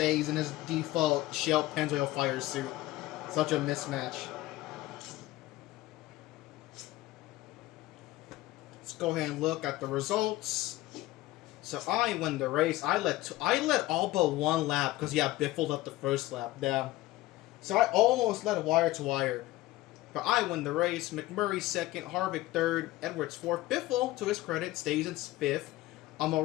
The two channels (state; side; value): quieter; right; 17.3 dB